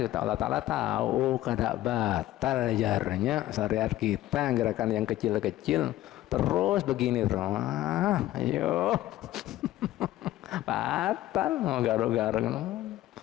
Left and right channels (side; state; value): right; quieter; 14.9 dB